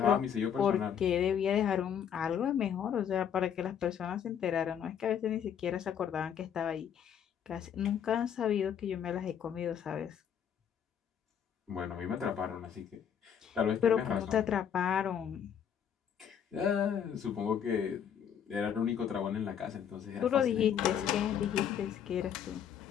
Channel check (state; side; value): quieter; right; 8.5 dB